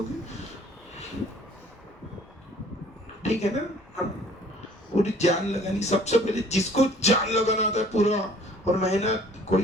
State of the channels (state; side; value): normal; both; correlation 0.54